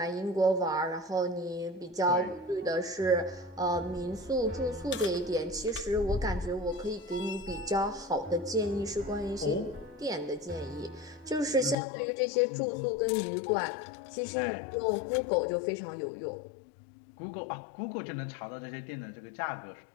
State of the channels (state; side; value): drops out; right; at 11.8 s